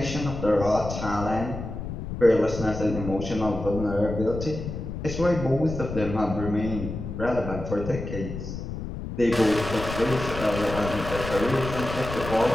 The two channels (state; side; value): noise; left; rumble, 7 dB below the sound